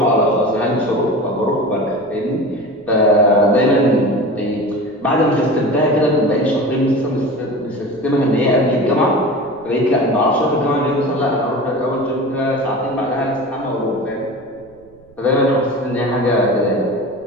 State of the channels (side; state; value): right; noise; rumble, 28 dB below the sound